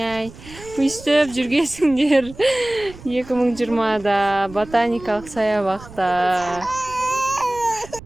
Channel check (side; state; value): right; noise; rumble, 18 dB below the sound